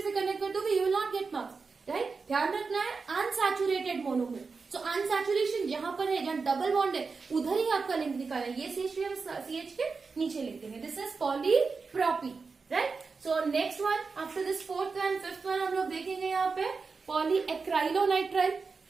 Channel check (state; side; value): quieter; left; 4.7 dB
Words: से कनेक्ट कर दोगे, you will not get marks, right. ध्यान रखना है अनसैचुरेटेड मोनोमर। सो अनसैचुरेशन जहां पर है, जहां डबल बॉन्ड है, उधर ही आपका लिंक निकालना है। ये CH3 हम CH के नीचे लिखते हैं, this is polypropene, right. So next one after this fourth and fifth one हम लोग देखेंगे यहाँ पे पॉलीएक्राइलोनाइट्राइल।